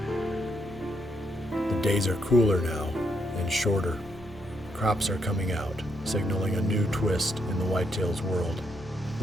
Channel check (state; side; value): normal; both; correlation 0.77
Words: The days are cooler now and shorter. Crops are coming out, signaling a new twist in the whitetail's world.